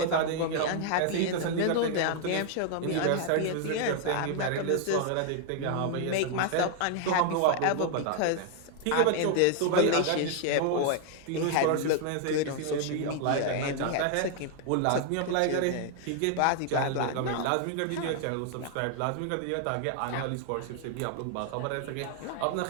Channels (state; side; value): different; both; correlation 0.00